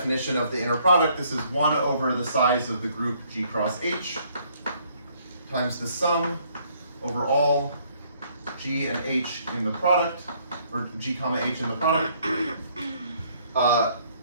of the inner product, this is 1 over the size of the group G cross H times the sum over all G and H in the product, or G comma H in the product,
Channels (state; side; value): inverted; both; correlation -0.65